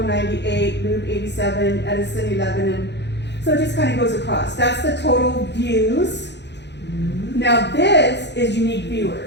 98, Loop 87, Edison 11, and so it just kind of goes across. That's the total views. Now this is unique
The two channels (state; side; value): late; right; 0.50 ms